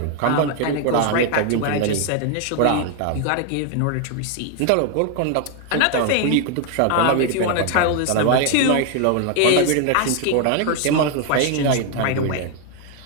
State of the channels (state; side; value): different; both; correlation 0.01